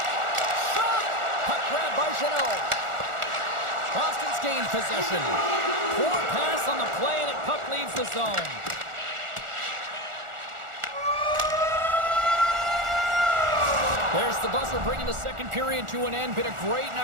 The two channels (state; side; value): late; left; 1.4 ms